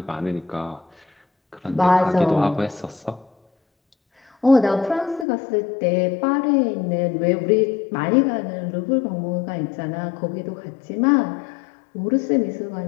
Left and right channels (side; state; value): right; drops out; at 5.2 s